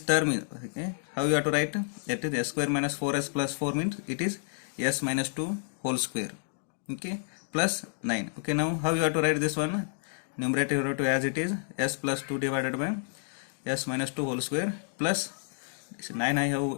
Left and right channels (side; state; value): right; silent; digital silence